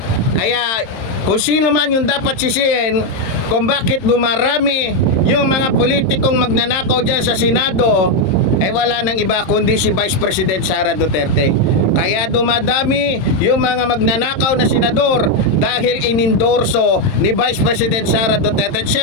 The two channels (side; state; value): right; late; 27 ms